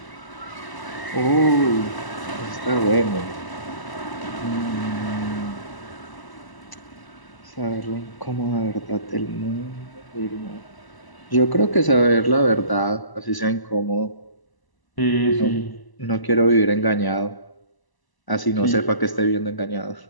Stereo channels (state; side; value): late; right; 1.0 ms